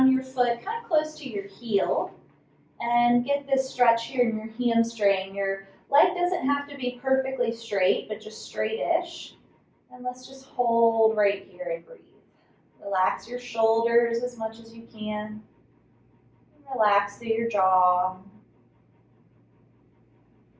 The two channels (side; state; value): both; identical; correlation 1.00